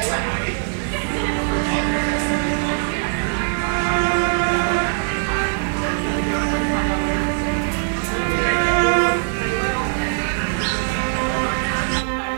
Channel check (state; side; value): silent; left; digital silence